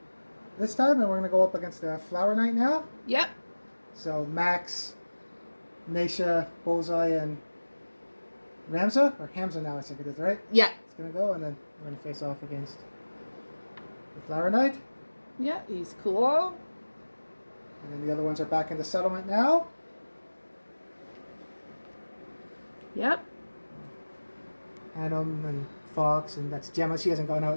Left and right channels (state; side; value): inverted; both; correlation -1.00